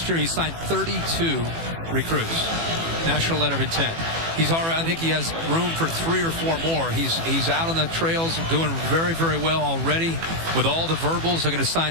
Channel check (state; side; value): late; left; 18 ms